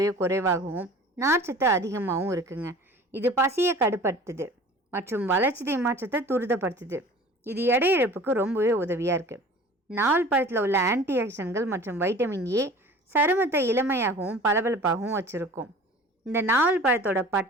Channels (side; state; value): both; normal; correlation 0.43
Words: குறைவாகவும் நார்ச்சத்து அதிகமாகவும் இருக்குங்க. இது பசியை கட்டுப்படுத்துது மற்றும் வளர்ச்சிதை மாற்றத்தை துரிதப்படுத்துது. இது எடை இழப்புக்கு ரொம்பவே உதவியாக இருக்குது. நாவல் பழத்தில் உள்ள ஆன்டி ஆக்சிடென்ட்கள் மற்றும் வைட்டமின் ஏ சருமத்தை இளமையாகவும் பளபளப்பாகவும் வச்சுருக்கும். இந்த நாவல் பழத்தோட